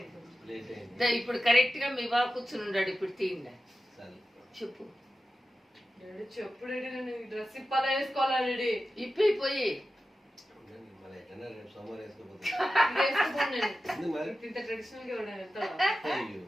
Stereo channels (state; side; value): normal; both; correlation 0.93